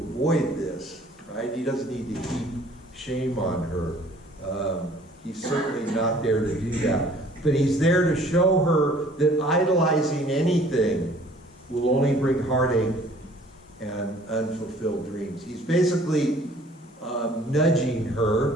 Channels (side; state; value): both; normal; correlation 0.54